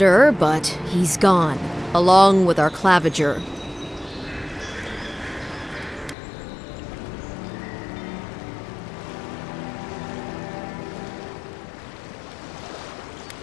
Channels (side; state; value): right; drops out; at 6.2 s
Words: but he's gone, along with our claviger.